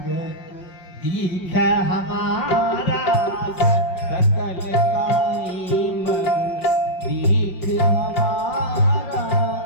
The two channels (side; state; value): right; late; 5.5 ms